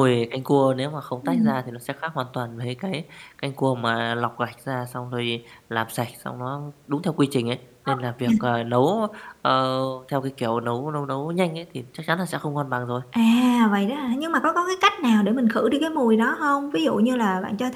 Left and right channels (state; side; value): identical; both; correlation 1.00